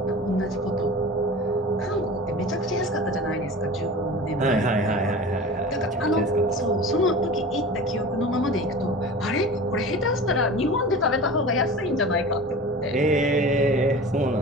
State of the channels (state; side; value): normal; both; correlation 0.36